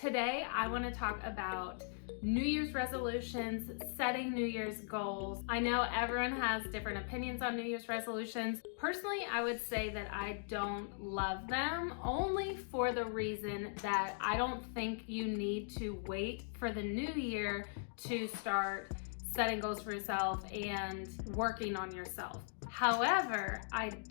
I want to talk about New Year's resolutions, setting New Year's goals. I know everyone has different opinions on New Year's resolutions. Personally, I would say that I don't love them, only for the reason that I don't think you need to wait for the new year to start setting goals for yourself and working on yourself. However, I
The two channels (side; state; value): right; silent; digital silence